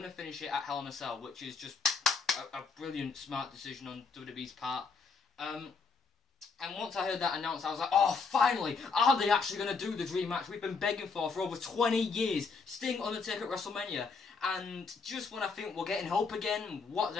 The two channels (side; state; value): right; quieter; 4.8 dB